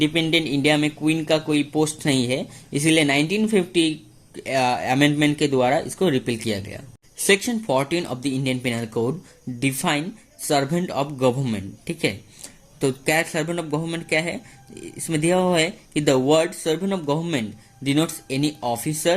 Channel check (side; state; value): both; identical; correlation 1.00